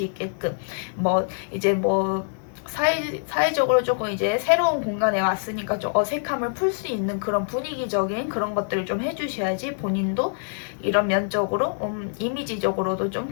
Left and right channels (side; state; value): right; silent; digital silence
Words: 있게끔 사회적으로 조금 이제 새로운 공간에 왔으니까 좀 어색함을 풀 수 있는 그런 분위기적인 그런 것들을 좀 해주셔야지 본인도 이런 면적으로 이미지적으로도 좀